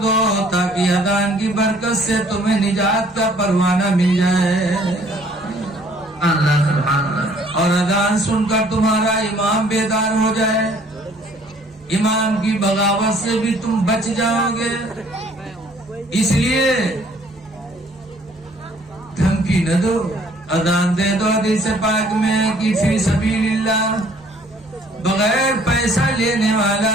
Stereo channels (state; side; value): normal; both; correlation 0.59